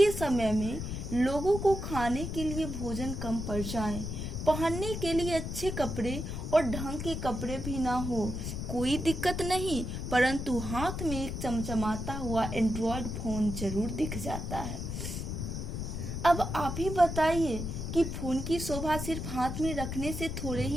समय में लोगों को खाने के लिए भोजन कम पड़ जाए, पहनने के लिए अच्छे कपड़े और ढंग के कपड़े भी ना हो, कोई दिक्कत नहीं, परंतु हाथ में एक चमचमाता हुआ एंड्रॉयड फोन जरूर दिख जाता है। अब आप ही बताइए कि फोन की शोभा सिर्फ हाथ में रखने से थोड़े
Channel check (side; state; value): left; noise; rumble, 5 dB below the sound